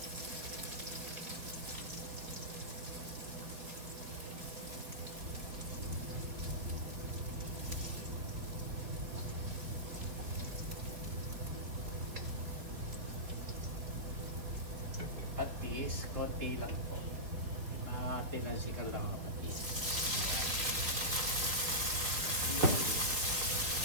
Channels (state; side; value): late; left; 4.1 ms